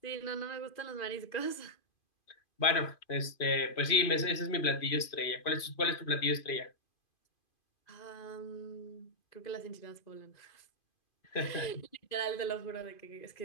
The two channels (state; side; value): late; right; 2.5 ms